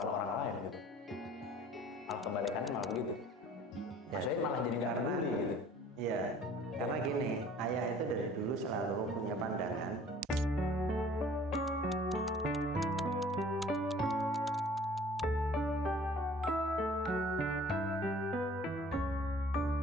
orang lain gitu, malah kebalikannya malah begitu. Maksudnya malah jadi nggak peduli gitu. Iya, karena gini, ayah itu dari dulu selalu punya pandangan.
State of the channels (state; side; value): normal; both; correlation 0.51